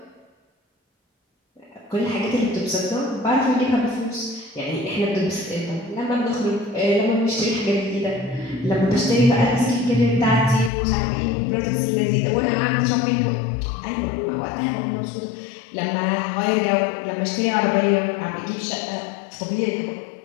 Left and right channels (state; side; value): drops out; right; at 10.7 s